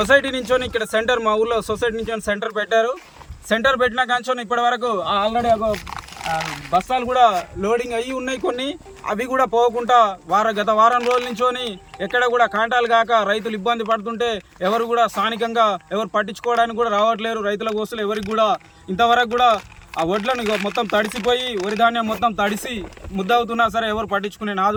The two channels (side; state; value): both; identical; correlation 1.00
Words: నుంచి ఇక్కడ సెంటర్, మా ఊళ్ళో సొసైటీ నుంచి సెంటర్ పెట్టారు. సెంటర్ పెట్టిన కాంచోని ఇప్పటి వరకు ఆల్రెడీ బస్తాలు కూడా లోడింగ్ అయ్యి ఉన్నాయి కొన్ని, అవి కూడా పోకుండా గత వారం రోజుల నుంచోని ఎక్కడ కూడా కాంటాలు కాక రైతులు ఇబ్బంది పడుతుంటే ఎవరు కూడా స్థానికంగా ఎవరు పట్టించుకోవడానికి కూడా రావట్లేరు. రైతుల కోసలు ఎవరికి కూడా ఇంతవరకు కూడా ఆ వడ్లను మొత్తం తడిసిపోయి వరి ధాన్యం మొత్తం తడిసి ముద్దవుతున్నా సరే ఎవరు పట్టించుకునే